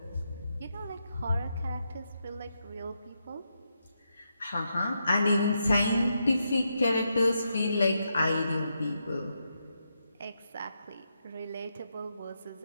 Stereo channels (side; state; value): both; inverted; correlation -0.83